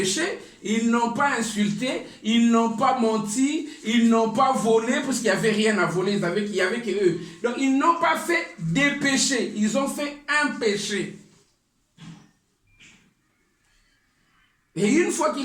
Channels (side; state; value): both; identical; correlation 1.00